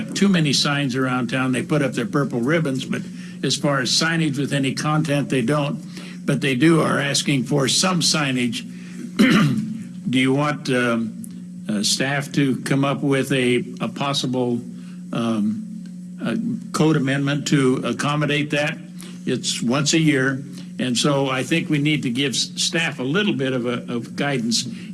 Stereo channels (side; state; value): both; identical; correlation 1.00